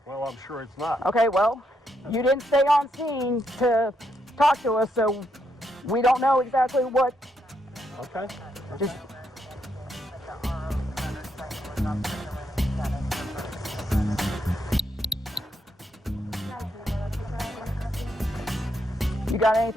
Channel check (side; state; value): both; normal; correlation 0.78